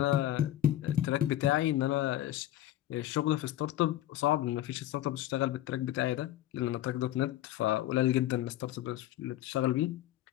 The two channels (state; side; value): quieter; right; 13.6 dB